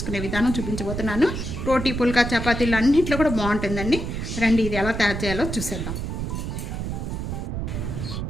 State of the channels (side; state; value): right; noise; rumble, 4 dB below the sound